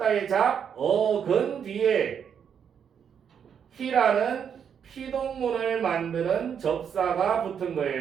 잡, 어근 뒤에 히라는 피동문을 만드는 접사가 붙은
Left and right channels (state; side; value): quieter; left; 7.7 dB